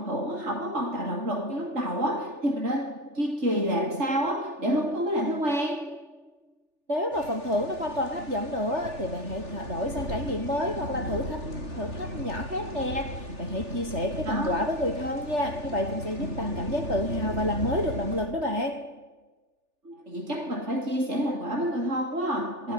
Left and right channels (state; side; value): late; left; 3.4 ms